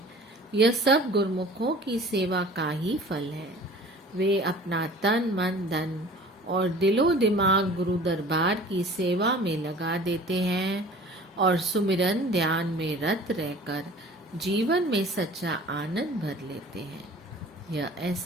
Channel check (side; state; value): both; normal; correlation 0.45